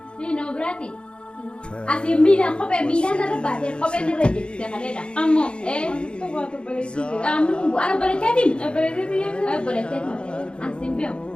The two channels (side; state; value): right; late; 0.055 ms